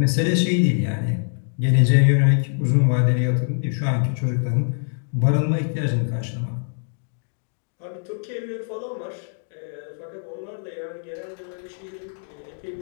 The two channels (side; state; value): right; silent; 63 dB below the other